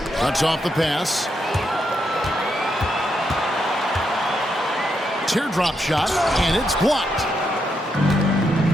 Cuts off the pass. Teardrop shot, and it's blocked.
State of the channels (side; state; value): both; normal; correlation 0.81